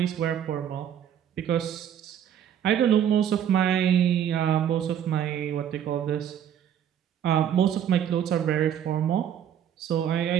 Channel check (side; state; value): left; quieter; 9.6 dB